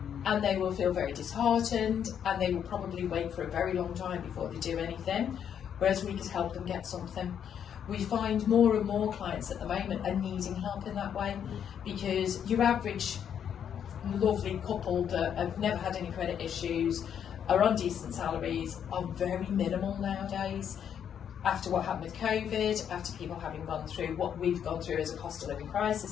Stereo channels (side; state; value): right; quieter; 8.6 dB